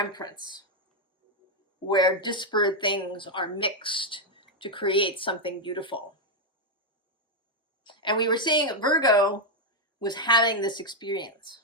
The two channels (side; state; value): both; normal; correlation 0.01